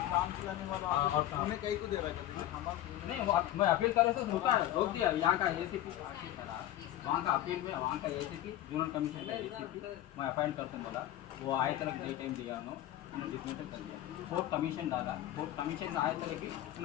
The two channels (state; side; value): quieter; right; 13.5 dB